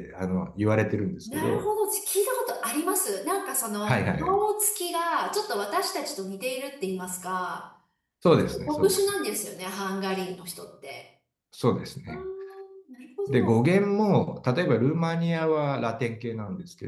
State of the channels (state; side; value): identical; both; correlation 1.00